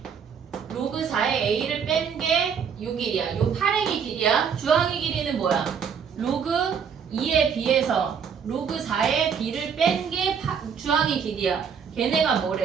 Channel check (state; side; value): quieter; left; 6.9 dB